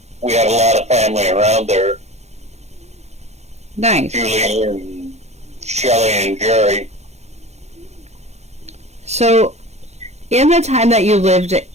we had a lot of family around there. Nice. Julie and Shelley and Jerry. So, in the time that you lived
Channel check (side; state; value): left; late; 0.32 ms